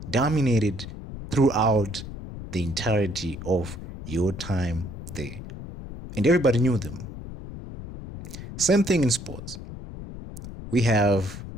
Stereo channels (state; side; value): noise; left; rumble, 11 dB below the sound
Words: dominated throughout the entirety of your time there. And everybody knew them. Same thing in sports. We have